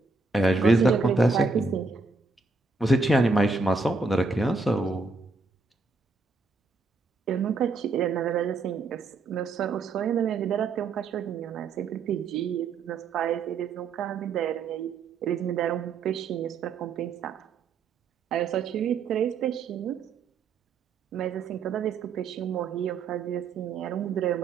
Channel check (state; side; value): quieter; left; 4.0 dB